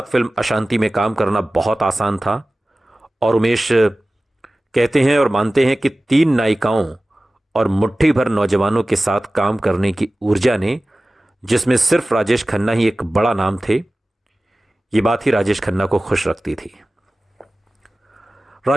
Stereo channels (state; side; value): normal; both; correlation 0.97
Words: फिल्म अशांति में काम करना बहुत आसान था और उमेश कहते हैं और मानते हैं कि तीन नायिकाओं और मुट्ठी भर नौजवानों के साथ काम करने की ऊर्जा ने, जिसमें सिर्फ राजेश खन्ना ही एक बड़ा नाम थे, ये बात ही राजेश खन्ना को खुश रखती थी।